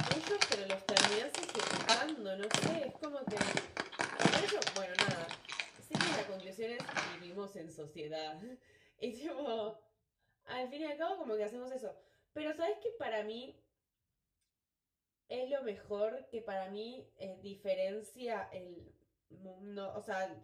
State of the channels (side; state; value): both; identical; correlation 1.00